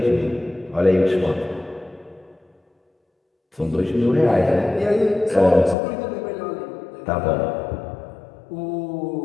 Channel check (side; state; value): right; drops out; at 5.8 s